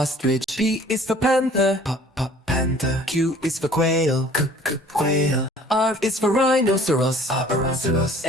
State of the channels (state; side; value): normal; both; correlation 0.52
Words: P is for panther. Panther. Q is for quail. Quail. R is for rhinoceros. Rhinoceros.